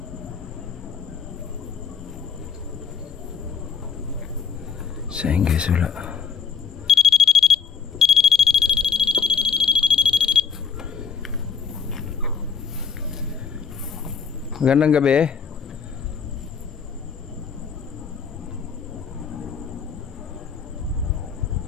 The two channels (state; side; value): quieter; right; 6.4 dB